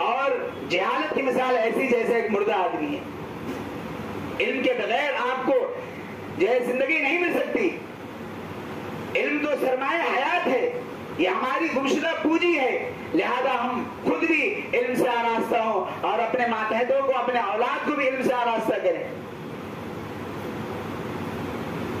اور جہالت کی مثال ایسی جیسے ایک مردہ آدمی ہے۔ علم کے بغیر آپ کو جو ہے زندگی نہیں مل سکتی۔ علم تو سرمایہ حیات ہے، یہ ہماری گمشدہ پونجی ہے، لہذا ہم خود بھی علم سے آراستہ ہوں اور اپنے ماتحتوں کو، اپنے اولاد کو بھی علم سے آراستہ کریں۔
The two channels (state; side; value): identical; both; correlation 1.00